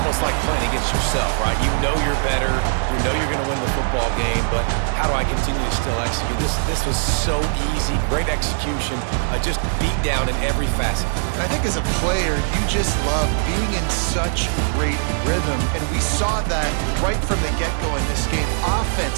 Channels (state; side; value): silent; left; 65 dB below the other